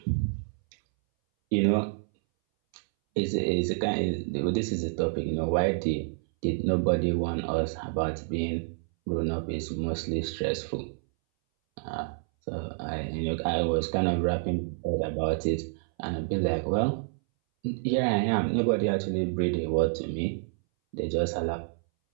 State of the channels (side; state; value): left; silent; 59 dB below the other